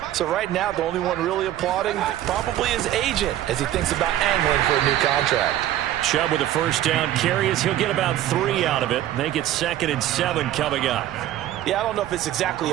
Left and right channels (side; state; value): left; quieter; 12.9 dB